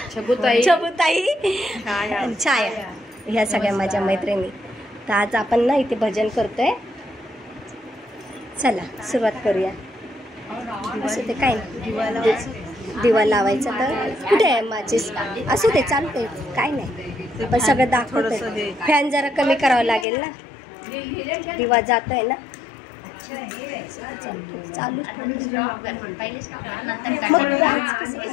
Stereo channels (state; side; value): drops out; right; at 20.1 s